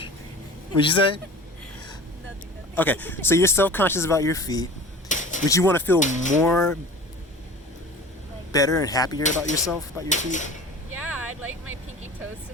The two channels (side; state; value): both; normal; correlation 0.40